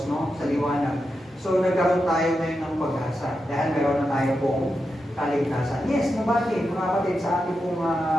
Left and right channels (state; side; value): normal; both; correlation 0.88